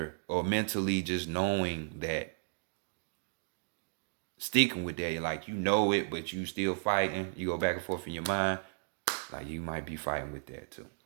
or mentally just knowing that, sticking with that, like it, but you still fighting. You go back and forth in your mind, like you might be fighting with that too.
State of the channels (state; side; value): silent; left; digital silence